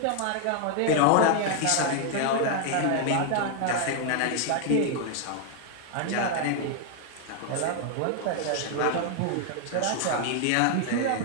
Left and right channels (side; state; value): both; different; correlation 0.00